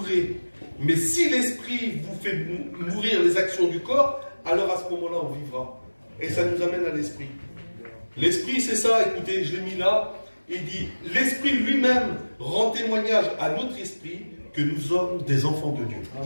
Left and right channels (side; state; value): both; inverted; correlation -1.00